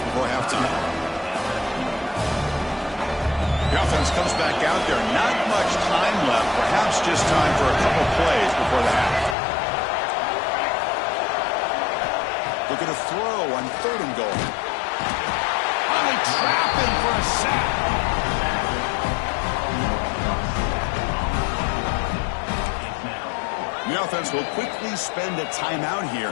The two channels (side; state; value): right; drops out; at 9.3 s